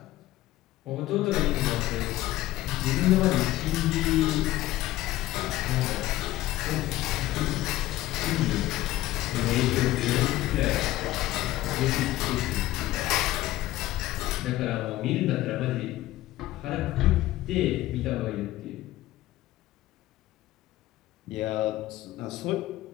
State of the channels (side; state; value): right; quieter; 15.9 dB